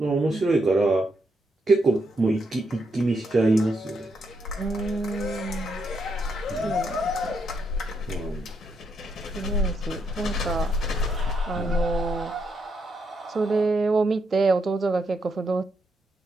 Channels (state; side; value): normal; both; correlation 0.79